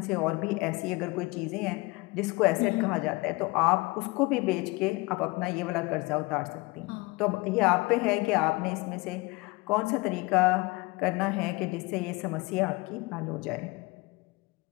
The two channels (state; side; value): quieter; right; 24.0 dB